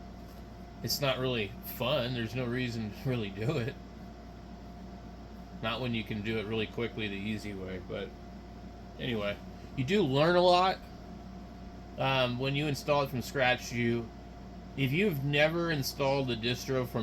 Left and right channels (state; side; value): identical; both; correlation 1.00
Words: it's not really fun. There's no reason to really do it. Not when you can do it really quickly the easy way. But anyway, you do learn a lot when you install it from scratch. If you've never installed a distro